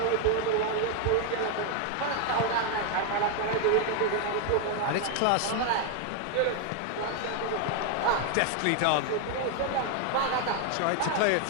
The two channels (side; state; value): both; different; correlation 0.00